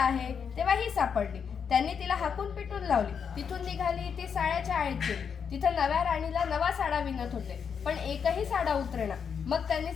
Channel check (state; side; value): quieter; right; 6.8 dB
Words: तेव्हा ही सापडली. त्यांनी तिला हाकून पिटून लावली. तिथून निघाली ती साड्याच्या आळीत गेली. तिथे नव्या राणीला नवा साडा विणत होते, पण एकही साडा उतरेना. मग त्यांनी